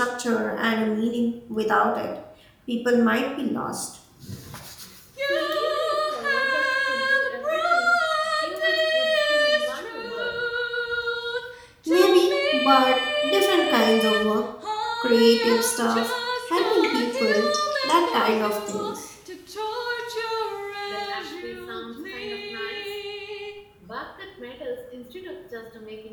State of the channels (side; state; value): both; identical; correlation 1.00